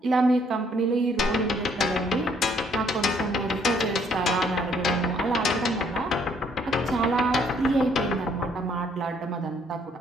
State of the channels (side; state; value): both; normal; correlation 0.66